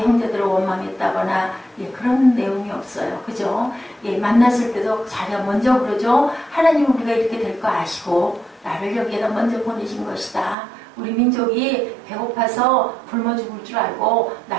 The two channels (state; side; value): drops out; left; at 10.6 s